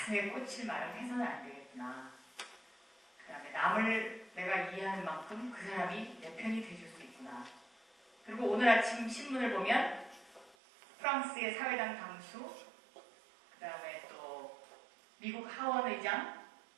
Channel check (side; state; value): left; drops out; at 10.6 s